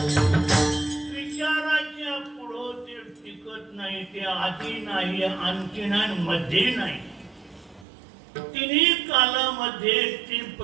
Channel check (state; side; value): drops out; left; at 7.9 s